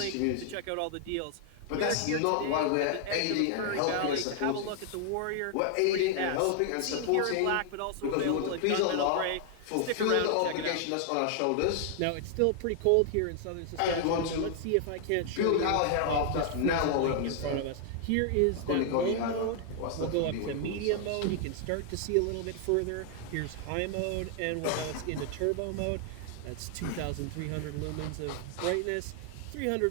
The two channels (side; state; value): both; different; correlation 0.00